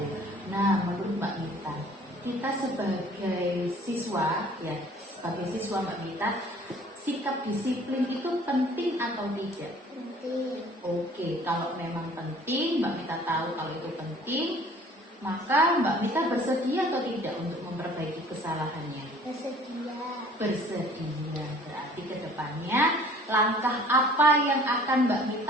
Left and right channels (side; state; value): both; normal; correlation 0.52